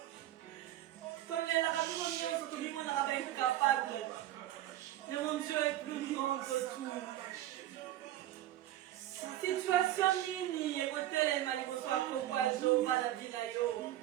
Tolelaka biso nyonso tobimonaka ba incapable. Mais mon Dieu est plus grand que tout. Situation nini ekotelema liboso ya kongo ya Jehova na vie na yo.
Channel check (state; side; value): quieter; left; 13.7 dB